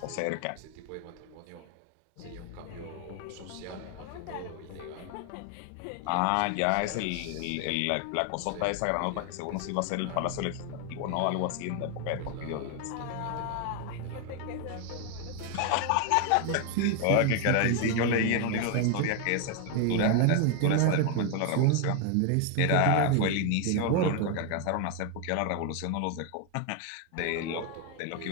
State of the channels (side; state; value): both; different; correlation 0.01